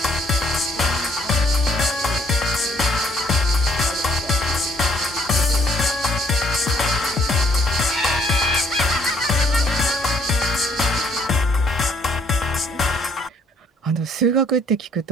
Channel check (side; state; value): both; normal; correlation 0.64